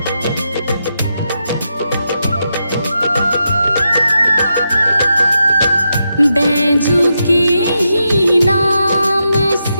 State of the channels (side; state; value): both; inverted; correlation -0.85